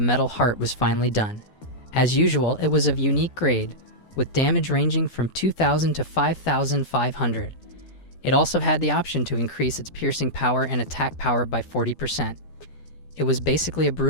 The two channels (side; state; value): right; late; 12 ms